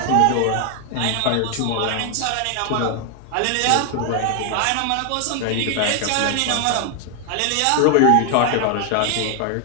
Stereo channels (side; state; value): both; different; correlation 0.01